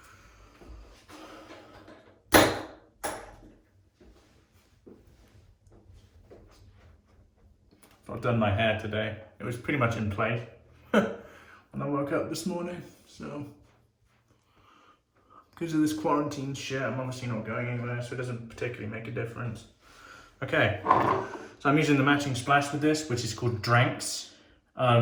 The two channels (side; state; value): both; identical; correlation 1.00